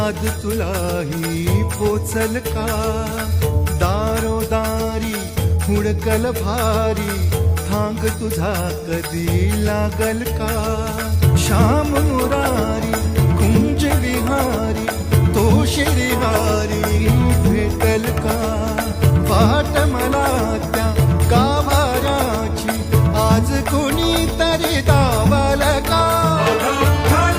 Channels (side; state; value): both; identical; correlation 1.00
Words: तुलाही पोचल का दारोदारी हुडकल भारी थांग तुझा कधी लागल का श्याम